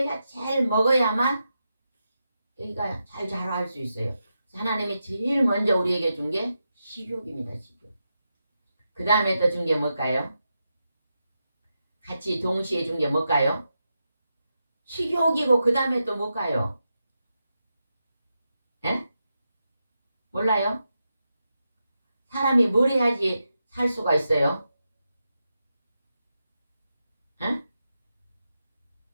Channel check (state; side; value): inverted; both; correlation -0.87